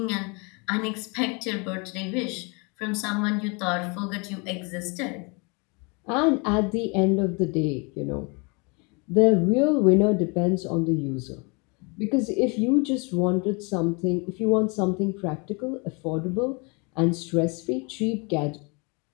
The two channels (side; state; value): right; quieter; 31.4 dB